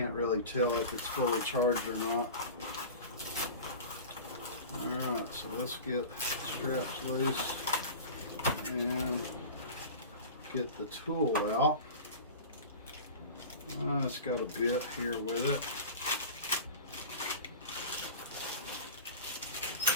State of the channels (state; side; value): inverted; both; correlation -0.34